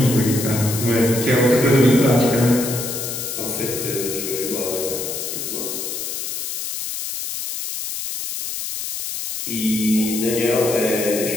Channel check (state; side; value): noise; left; hiss, 5 dB below the sound